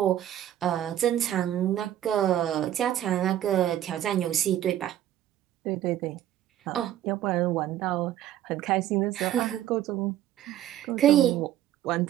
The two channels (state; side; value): quieter; left; 12.0 dB